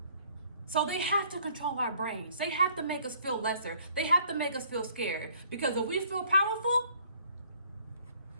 So they have to control our brains. They have to make us feel lesser. They have to make us feel scared, because if we feel powerful,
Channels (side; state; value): both; inverted; correlation -0.60